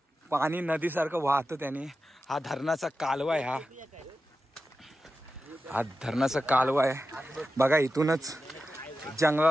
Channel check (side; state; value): both; normal; correlation 0.92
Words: पाणी नदीसारखं वाहतं त्याने। हा धरणाचा कालवा आहे, हा धरणाचा कालवा आहे। बघा, इथूनच